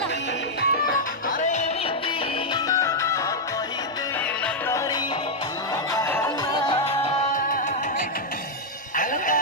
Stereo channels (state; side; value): normal; both; correlation -0.03